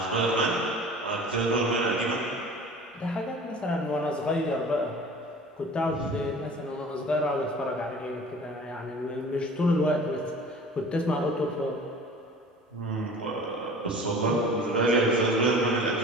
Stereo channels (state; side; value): normal; both; correlation 0.43